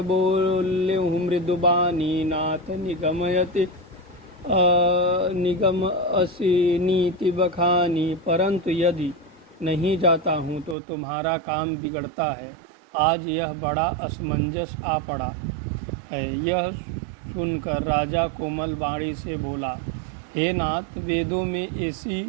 बोल्यहु मृदुबानी नाथ निगम असी नीति बखानी। परंतु यदि नहीं जाता हूँ तो तुम्हारा काम बिगड़ता है। आज यह बड़ा असमंजस आ पड़ा है। यह सुनकर राजा कोमल वाणी से बोला, हे नाथ, वेदों में ऐसी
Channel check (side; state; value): left; drops out; at 10.8 s